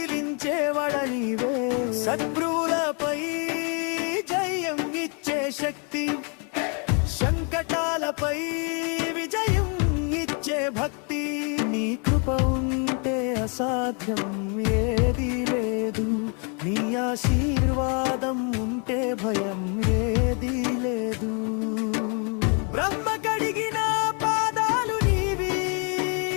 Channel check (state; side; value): quieter; right; 36.8 dB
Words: నీవే. శత్రువులపై జయం ఇచ్చే శక్తి, సంకటాలపై విజయం ఇచ్చే భక్తి. నీ కృప ఉంటే అసాధ్యం ఏది లేదు, నీ ఆశీర్వాదం ఉంటే భయం ఏది లేదు. బ్రహ్మ కడిగిన పాదాలు నీవి,